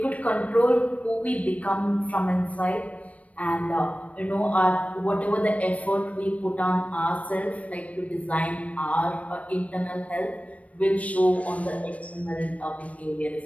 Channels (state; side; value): late; right; 0.066 ms